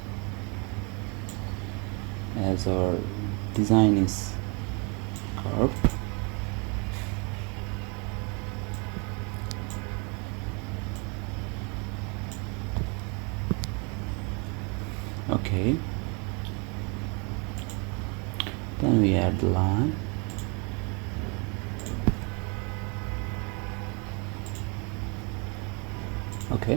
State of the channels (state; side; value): quieter; left; 33.0 dB